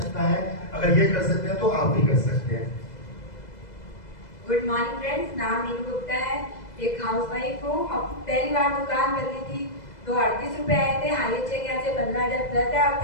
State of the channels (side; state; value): right; late; 2.0 ms